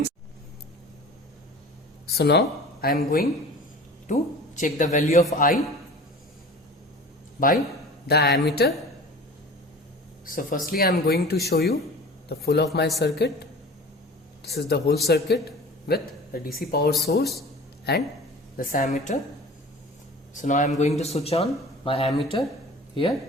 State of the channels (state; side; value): normal; both; correlation 0.40